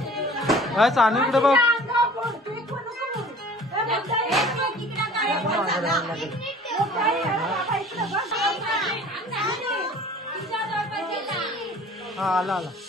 सानू इकडे बघ. हा आला आला.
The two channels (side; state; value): both; normal; correlation 0.48